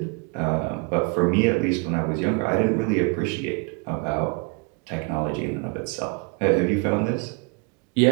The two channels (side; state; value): left; quieter; 33.9 dB